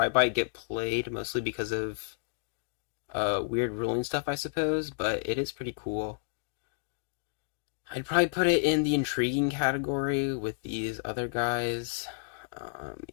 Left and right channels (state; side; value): silent; right; digital silence